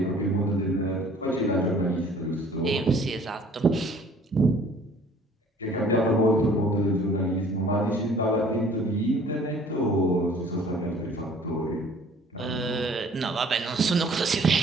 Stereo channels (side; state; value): both; normal; correlation 0.53